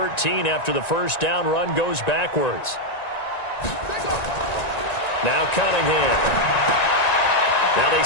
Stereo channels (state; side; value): late; right; 1.9 ms